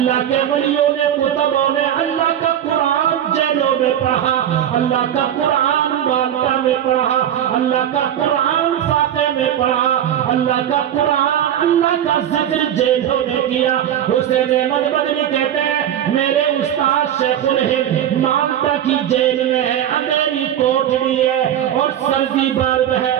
کے ولیوں نے، کتبوں نے اللہ کا قرآن جیلوں میں پڑھا، اللہ کا قرآن مالٹا میں پڑھا، اللہ کا قرآن فاتح میں پڑھا، اللہ کا قرآن، اللہ کا ذکر جیلوں میں کیا۔ حسین احمد مدنی کہتے ہیں میرے استاد شیخ الہند مالٹا کی جیل میں ہے، اندھیری کوٹڑی ہے اور سردی برد ہے۔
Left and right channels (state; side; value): quieter; left; 10.4 dB